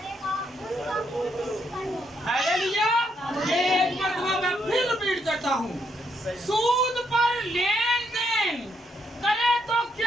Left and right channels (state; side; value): normal; both; correlation 0.76